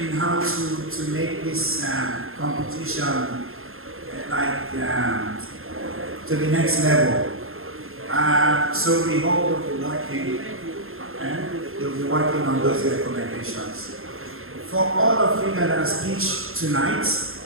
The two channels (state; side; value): late; left; 0.61 ms